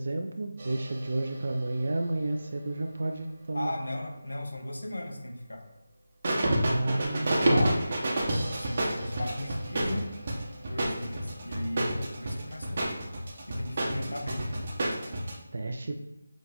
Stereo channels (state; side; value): inverted; both; correlation -0.93